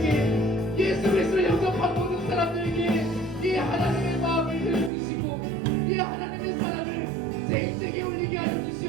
예수 그리스도를 영접한 모든 사람들에게 이 하나님의 마음을 들려주시고 이 하나님의 사랑을 제 인생에 올리게 하여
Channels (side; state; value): left; drops out; at 4.9 s